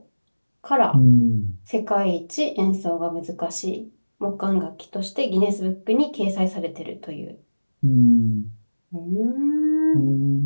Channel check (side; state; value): both; inverted; correlation -1.00